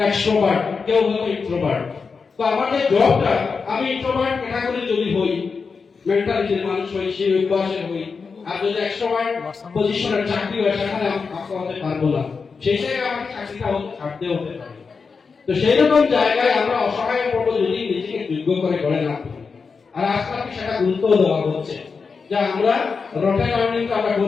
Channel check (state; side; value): quieter; right; 5.1 dB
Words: কেউ হয়তো ইন্ট্রোভার্ট। তো আমাদের জবটা, আমি ইন্ট্রোভার্ট ক্যাটাগরি যদি হই, মেন্টালিটির মানুষ হই, সেই অভ্যাসের হই, আর যদি এক্সট্রোভার্ট পজিশনের চাকরি হয় সেখানে আমি কাজ করতে পারবো না, সেই জায়গায় আমাকে চাকরিটা ছাড়তে হতে পারে। তো সেই রকম জায়গায় আমরা অসহায় পড়বো যদি নিজেকে যোগ্য করে গড়ে না তুলি। আর আজকে সেটা গুরুত্ব দেওয়া হচ্ছে যে আমরা রটেন লার্নিংটা আমরা